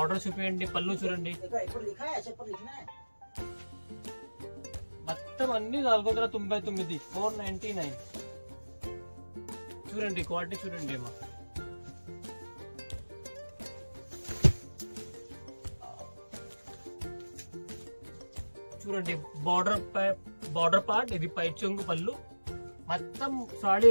చూపించండి, పళ్ళు చూడండి. మొత్తం అన్ని 499 499. చూడండి క్వాలిటీ చూడండి అమ్మా. చూడండి బార్డర్ పార్ట్, ఇది పైట్ చెంగు, పళ్ళు, మొత్తం సాడీ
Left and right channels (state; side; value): inverted; both; correlation -1.00